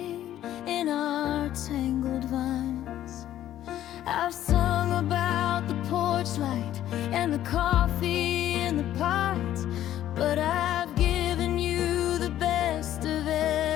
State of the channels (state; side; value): quieter; right; 12.3 dB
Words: in our tangled vines. I've sung about the porch light and the coffee in the pot, but I've given you the best of